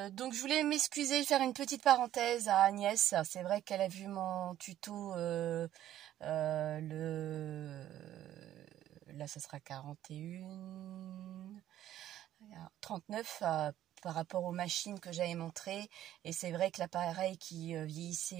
Donc je voulais m'excuser, faire une petite parenthèse à Agnès. C'est vrai qu'elle a vu mon tuto là ça sera 39 par rapport aux machines que j'avais montrées, et c'est vrai que l'appareil qui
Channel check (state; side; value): quieter; left; 12.5 dB